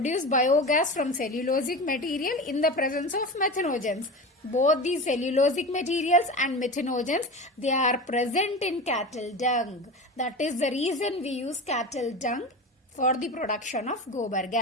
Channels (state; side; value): normal; both; correlation 0.28